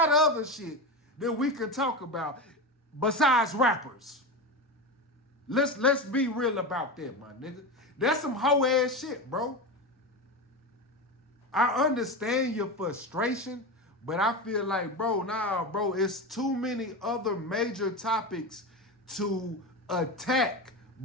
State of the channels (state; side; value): normal; both; correlation 0.20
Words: of other shit that we can talk about besides rappers. Let's be real about that, my nigga. That's some hoe ass shit, bro. I understand your frustration, but I feel like, bro, it's too many other major topics to attack